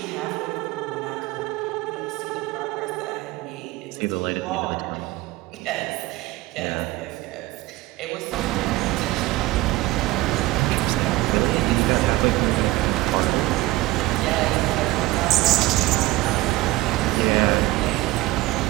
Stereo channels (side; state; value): left; quieter; 18.4 dB